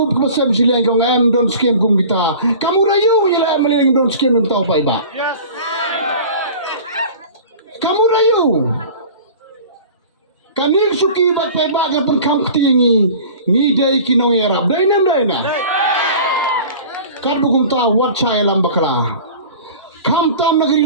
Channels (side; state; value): both; inverted; correlation -0.41